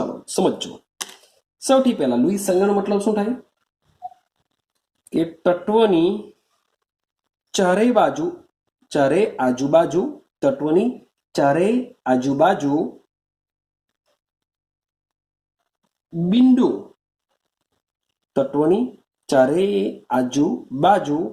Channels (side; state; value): both; identical; correlation 1.00